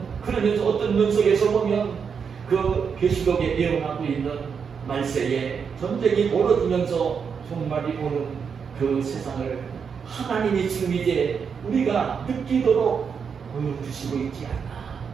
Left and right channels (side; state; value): left; quieter; 6.4 dB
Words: 그러면서 어떤 면속에서 보면 그 계시록에 예언하고 있는 말세에 전쟁이 벌어지면서 종말이 오는 그 세상을 하나님이 지금 이제 우리가 느끼도록 보여주시고 있지 않나.